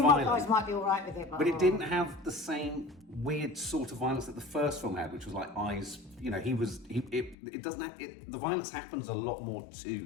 You guys might be alright with it, but it didn't have the same weird sort of violence that the first film had, which was like eyes, you know, it doesn't have, the violence happens a lot more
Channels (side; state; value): right; drops out; at 7.4 s